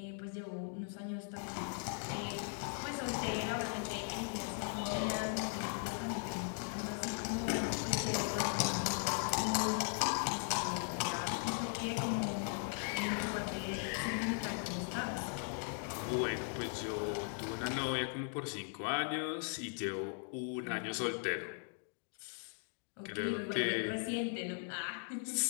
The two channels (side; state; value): right; silent; 52 dB below the other